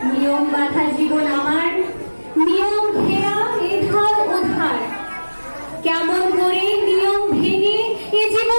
নিয়ম বাঁধা জীবন আমার, নিয়ম ঘেরা এধার ওধার। কেমন করে নিয়ম ভেঙে এ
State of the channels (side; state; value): both; inverted; correlation -1.00